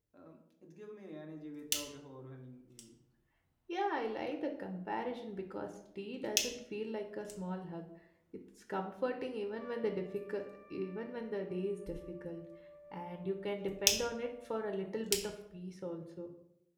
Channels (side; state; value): both; identical; correlation 1.00